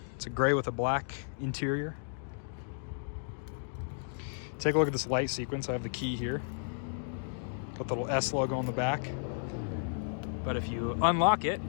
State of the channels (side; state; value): right; silent; digital silence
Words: It's a gray with a black interior. Take a look at this light sequence. I have the key here. Got the little S logo on the back. But if you unlock it,